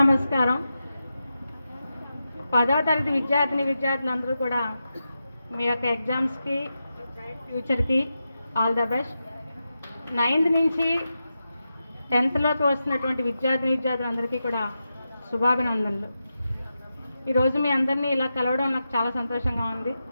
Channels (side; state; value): both; inverted; correlation -0.90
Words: 10వ తరగతి విద్యార్థులందరూ కూడా మీ యొక్క ఎగ్జామ్స్కి, బ్రైట్ ఫ్యూచర్కి ఆల్ ద బెస్ట్. 9th నుంచి 10thలోకి వస్తున్నటువంటి విద్యార్థులందరికీ కూడా శుభాభినందనలు. ఈరోజు మీ అందరినీ ఇలా కలవడం నాకు చాలా సంతోషంగా ఉంది.